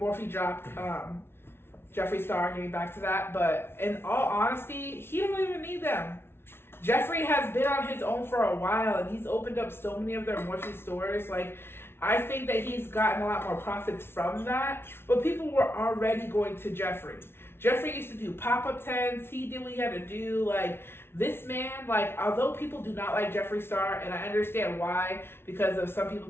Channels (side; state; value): right; late; 0.12 ms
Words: dropped Jeffree Star, getting back to that. But in all honesty, he don't even need them. Jeffree has been on his own for a while, and he's opened up so many of their Mochi stores. Like, I think that he's gotten a lot more profits from that, but people were already going to Jeffree. Jeffree used to do pop-up tents. He did what he had to do. Like, this man, like, although people do not like Jeffree Star, and I understand why, because of some people